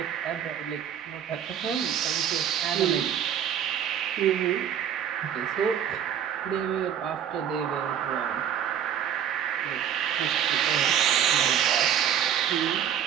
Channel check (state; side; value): quieter; left; 9.3 dB